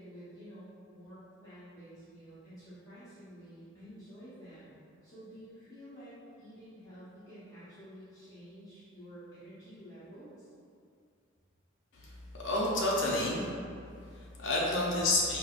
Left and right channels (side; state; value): both; normal; correlation 0.13